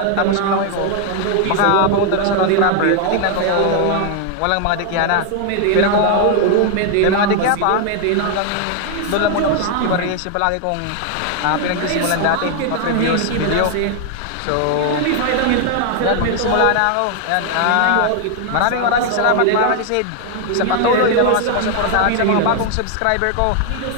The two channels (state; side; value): different; both; correlation 0.00